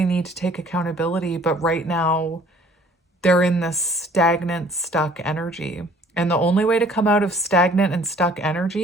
need to take accountability, but right now they're in this stagnant, stuck energy. And the only way to come out of stagnant and stuck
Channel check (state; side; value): normal; both; correlation 0.55